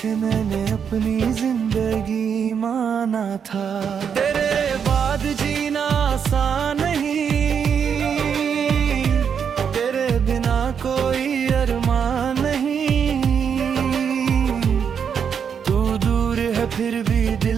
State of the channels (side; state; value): left; quieter; 7.2 dB